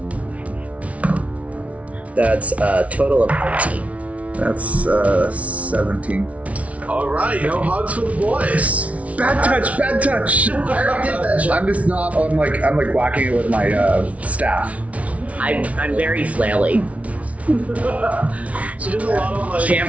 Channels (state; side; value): late; left; 0.066 ms